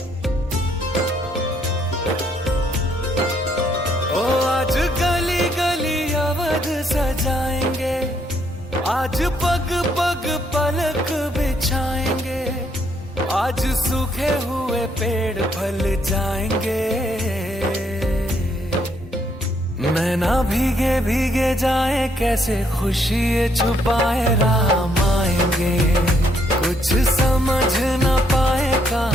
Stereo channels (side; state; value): both; normal; correlation 0.71